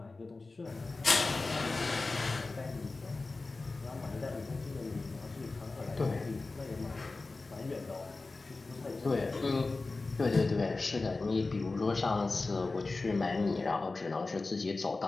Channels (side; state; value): right; quieter; 3.6 dB